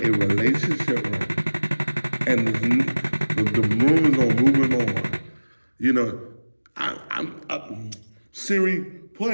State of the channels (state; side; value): inverted; both; correlation -1.00